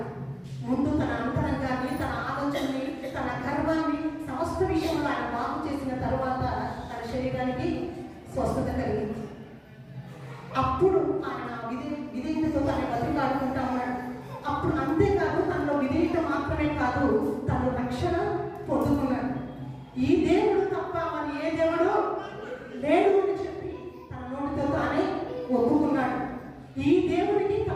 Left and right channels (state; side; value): identical; both; correlation 1.00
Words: ముందు తన అంతరంగాన్ని, తన ఆలోచనని, తన గర్వాన్ని, సమస్త విషయంలో ఆయన బాగు చేసిన తర్వాత తన శరీరానికి స్వస్థత కలిగింది. అప్పుడు ఆయన విధేయతతో తన బతికాడుకుంటా ఉన్నాడు. అప్పుడు అంతేకాదు, తనలో విధేయత మాత్రమే కాదు, తను రక్షణ పొందుకున్నాడు. ఈ దేవుడు తప్ప మరి ఏ దేవుడు లేడు అని చెప్పి తన నోటితో తానే ఒప్పుకున్నాడు. ఈ దేవునికి